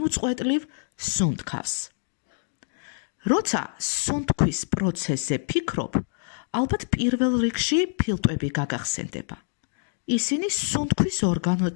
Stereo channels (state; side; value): silent; right; digital silence